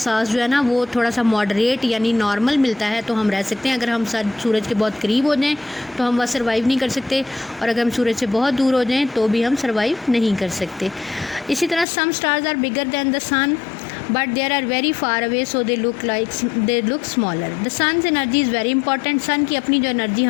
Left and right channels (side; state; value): right; drops out; at 11.9 s